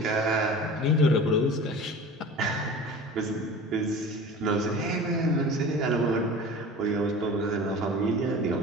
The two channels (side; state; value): both; normal; correlation 0.38